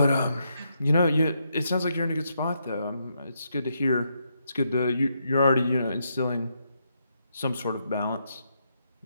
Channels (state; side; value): inverted; both; correlation -0.79